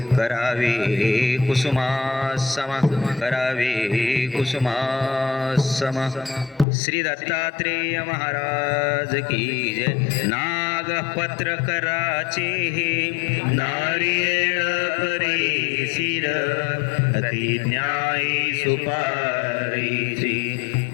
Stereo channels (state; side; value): drops out; right; at 6.7 s